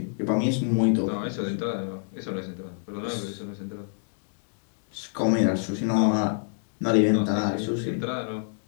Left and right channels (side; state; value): right; silent; 60 dB below the other